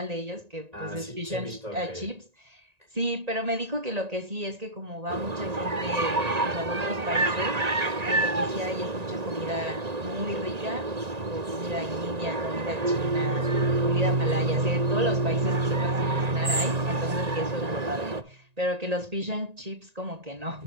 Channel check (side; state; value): left; late; 1.9 ms